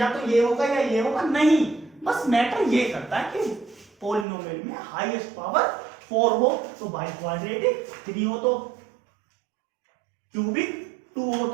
तो ये होगा या ये होगा, नहीं, बस मैटर ये करता है कि पॉलिनोमियल में हाईएस्ट पावर 4 हो तो बाई क्वाड्रेटिक, 3 हो तो क्यूबिक, 2 हो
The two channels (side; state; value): left; drops out; at 4.2 s